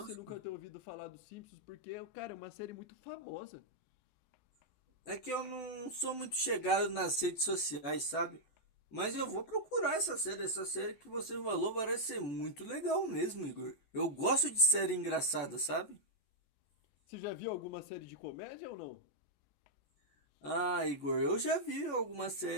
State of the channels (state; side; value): late; right; 14 ms